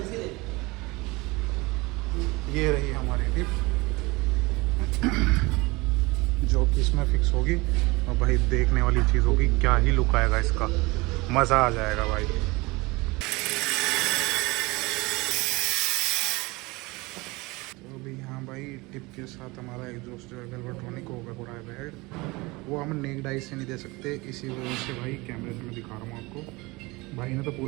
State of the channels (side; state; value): left; quieter; 23.7 dB